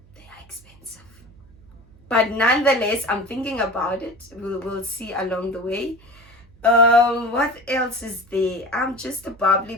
They are expensive. But nonetheless, I'm thinking about it. We'll see along the way. What else is there? I'm just a bubbly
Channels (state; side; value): noise; right; hum, 26 dB below the sound